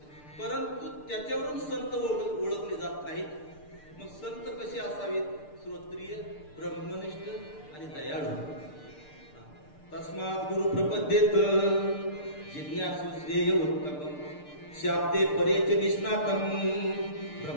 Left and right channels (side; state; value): right; late; 6.7 ms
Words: परंतु त्याच्यावरून संत ओळखले जात नाहीत. मग संत कसे असावेत? श्रोत्रिय, ब्रह्मनिष्ठ आणि दयाळू. तस्मात् गुरु प्रपद्येत जिज्ञासु श्रेय उत्तमं शाब्दे परेच निष्णातं